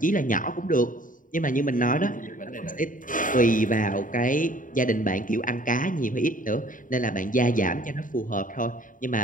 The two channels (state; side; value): late; right; 0.39 ms